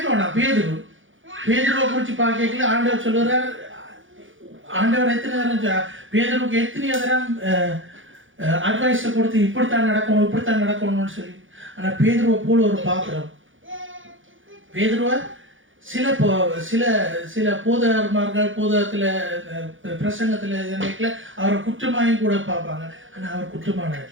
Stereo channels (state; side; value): late; left; 0.57 ms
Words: வேணாம். பேதுருவை குறித்து பார்க்கல ஆண்டவர் சொல்லுறார், ஆண்டவர் எத்தனை நேரம் பேதுருவுக்கு எத்தனையோ தரம் அட்வைஸை கொடுத்து இப்படித்தான் நடக்கணும்னு சொல்லி. ஆனால் பேதுருவை போல ஒரு பாத்திரம், பேதுருவை சில போதகர்மார்கள் போதகத்தில் பிரசங்கத்தில் நினைக்கல, அவரை குற்றமாயும் கூட பார்ப்பாங்க. ஆனால் அவர் குற்றமான